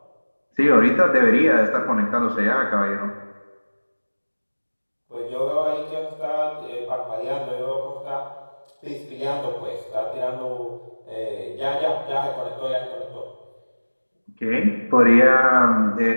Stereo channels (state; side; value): inverted; both; correlation -1.00